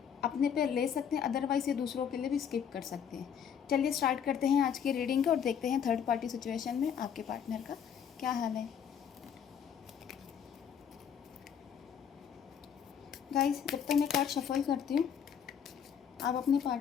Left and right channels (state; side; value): quieter; right; 8.0 dB